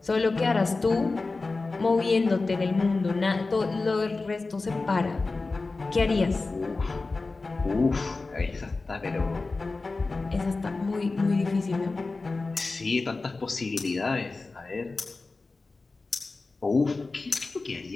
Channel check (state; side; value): quieter; right; 3.6 dB